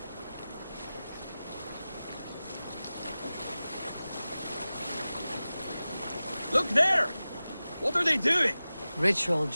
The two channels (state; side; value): inverted; both; correlation -0.96